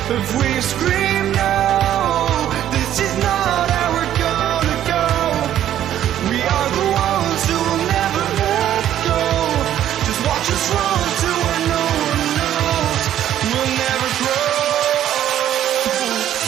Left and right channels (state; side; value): quieter; left; 11.5 dB